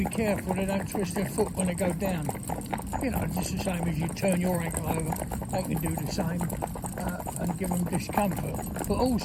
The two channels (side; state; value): both; identical; correlation 1.00